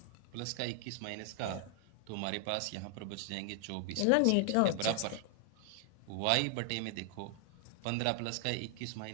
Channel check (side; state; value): both; different; correlation 0.00